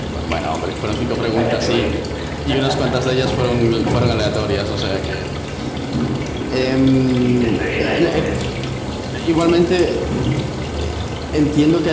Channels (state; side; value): identical; both; correlation 1.00